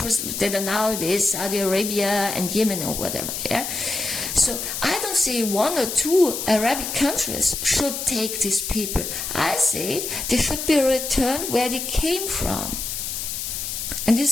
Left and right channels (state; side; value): noise; left; hiss, 4 dB below the sound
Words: that are nowadays Saudi Arabia and Yemen or whatever. Yeah. So I don't say 1 or 2 Arabic countries should take these people. I say they should be returned where they came from. And